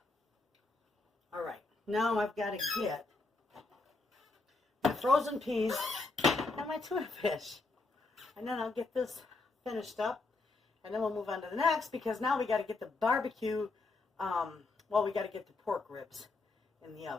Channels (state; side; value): quieter; right; 3.6 dB